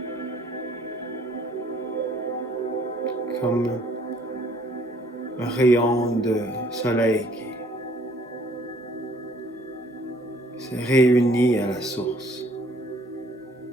Comme un rayon de soleil qui se réunit à la source.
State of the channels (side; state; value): both; normal; correlation 0.60